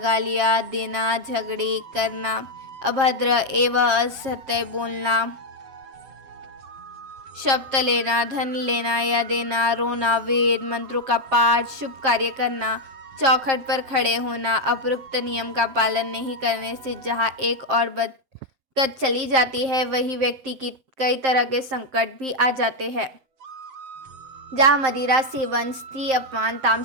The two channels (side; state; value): left; late; 7.5 ms